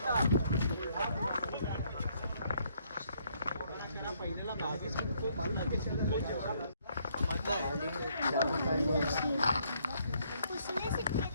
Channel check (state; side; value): inverted; both; correlation -0.70